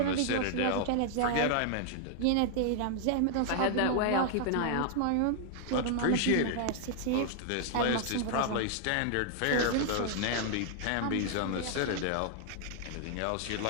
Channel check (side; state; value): both; different; correlation 0.00